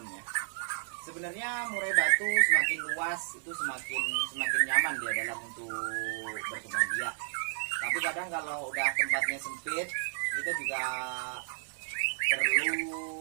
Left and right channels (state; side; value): silent; left; digital silence